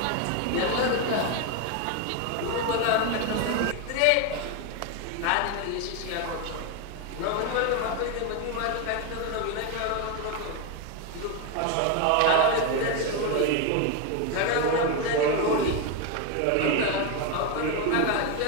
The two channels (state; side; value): different; both; correlation 0.02